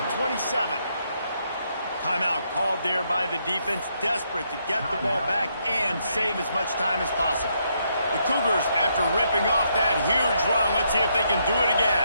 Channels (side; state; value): both; inverted; correlation -0.76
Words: 27. Timeout called there by the defense, desperate to get the ball back and save as much time as possible. The Cougars, after ripping off that huge run, let's see if they can do it